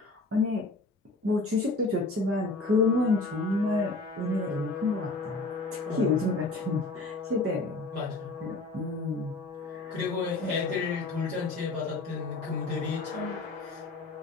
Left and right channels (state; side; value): quieter; right; 3.2 dB